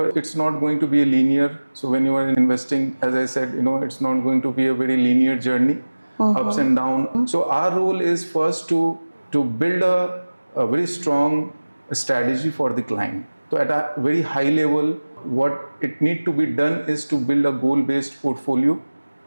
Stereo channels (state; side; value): inverted; both; correlation -1.00